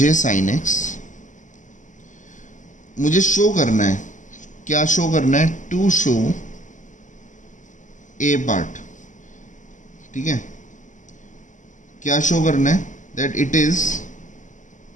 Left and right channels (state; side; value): late; right; 0.37 ms